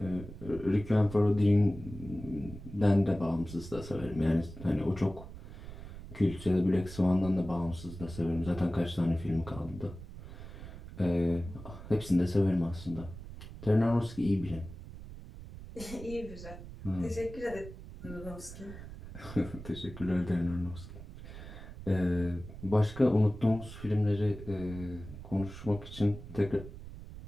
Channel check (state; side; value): noise; right; rumble, 13 dB below the sound